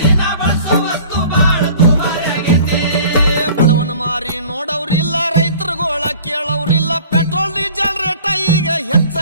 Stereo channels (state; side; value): inverted; both; correlation -0.47